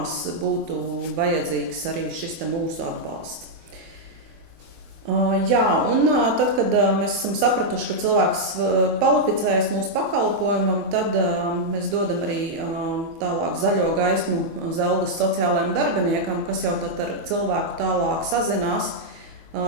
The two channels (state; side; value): late; left; 24 ms